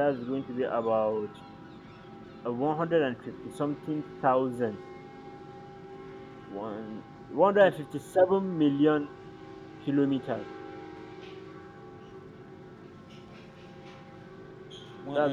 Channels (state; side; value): identical; both; correlation 1.00